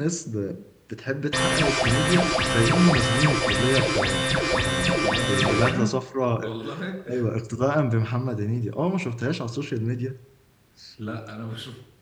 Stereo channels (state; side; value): identical; both; correlation 1.00